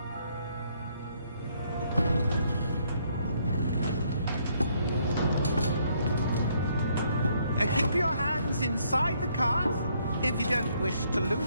Keep your hands inside the cart if you don't wish to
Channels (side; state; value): both; inverted; correlation -0.69